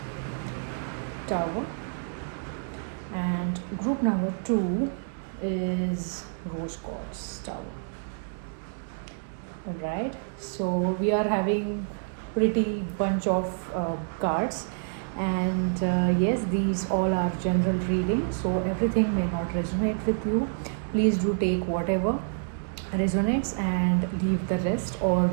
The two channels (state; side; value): silent; left; 59 dB below the other